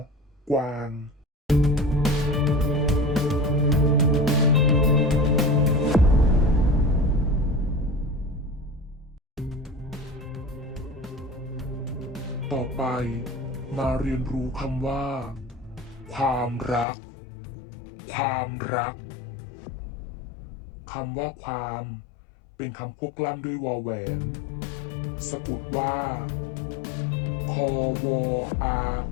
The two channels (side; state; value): right; drops out; at 16.9 s